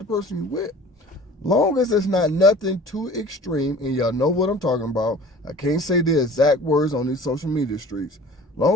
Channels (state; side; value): normal; both; correlation 0.45